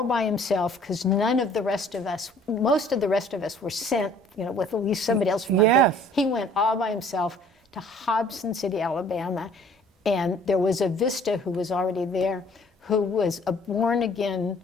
by himself, because none of the rest of us, most of the rest of us were sent, you know, with at least somebody else from our group. Yes. He went all by himself to Hobson City, Alabama, and there was a Vista who was already there, who was a born-again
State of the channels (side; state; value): both; normal; correlation 0.54